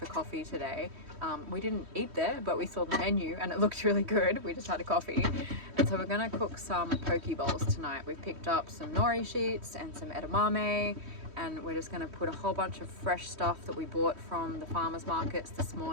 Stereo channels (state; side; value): late; left; 3.1 ms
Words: coffee today. We didn't eat there, but we saw the menu and it looked really good. We just had a coffee. And so we're gonna cook some poke bowls tonight. We've picked up some nori sheets and some edamame and we're just going to put a whole bunch of fresh stuff that we bought from the farmers markets this